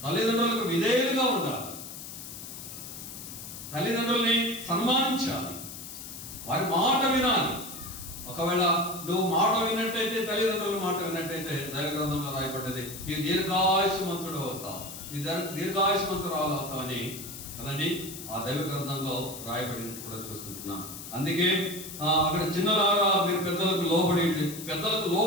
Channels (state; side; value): noise; left; hiss, 11 dB below the sound